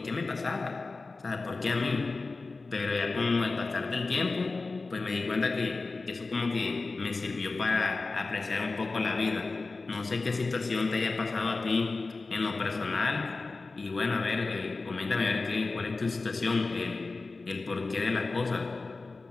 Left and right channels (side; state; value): right; quieter; 3.7 dB